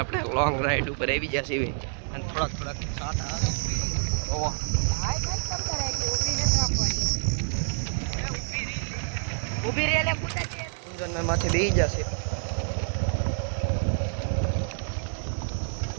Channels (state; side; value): silent; left; 60 dB below the other